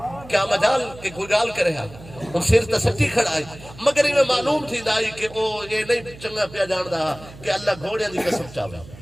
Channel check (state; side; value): noise; right; hum, 18 dB below the sound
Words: کیا مجال کہ کوئی گال کرے ہاں وہ سر تسٹی کھڑا ہے مگر انہیں معلوم تھی دائی کہ وہ یہ نہیں چنگا پیا جان دا کہ اللہ گھوڑے دی قسم چاہے